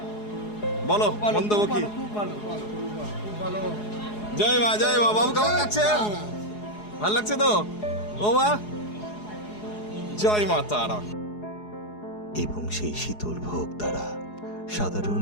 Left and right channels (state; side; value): late; right; 4.8 ms